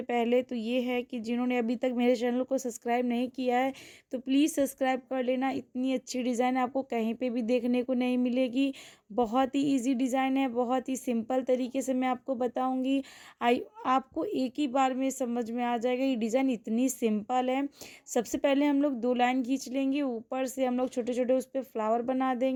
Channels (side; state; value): both; identical; correlation 1.00